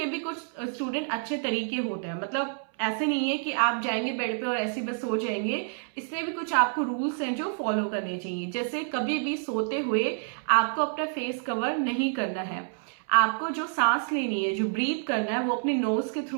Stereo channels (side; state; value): left; silent; 59 dB below the other